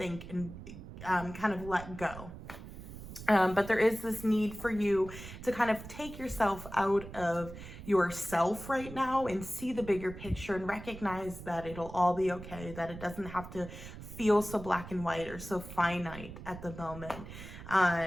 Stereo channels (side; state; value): right; noise; rumble, 13 dB below the sound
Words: and kind of let go. But there is this need for you to kind of take yourself out of yourself right now and see the bigger picture and recognize that it'll all be okay, that it doesn't have to feel so black and white or so finite at the moment.